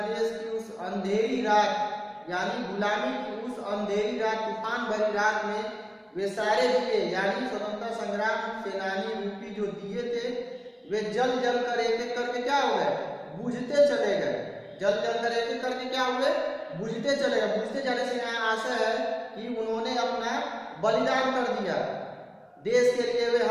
देश की उस अंधेरी रात, यानी गुलामी की उस अंधेरी रात, तूफान भरी रात में वे सारे दिए, यानी स्वतंत्रता संग्राम सेनानी रूपी जो दिए थे, वे जल जल कर एक एक करके क्या हो गए, बुझते चले गए। जल जल कर एक एक करके क्या हुए, बुझते चले गए। बुझते जाने से यहाँ आशा है कि उन्होंने अपना बलिदान कर दिया देश के लिए। वे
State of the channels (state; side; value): identical; both; correlation 1.00